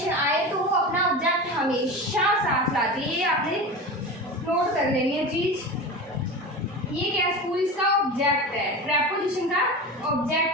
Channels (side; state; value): both; normal; correlation 0.28